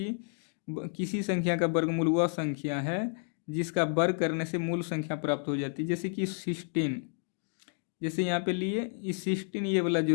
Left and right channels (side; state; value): right; silent; 57 dB below the other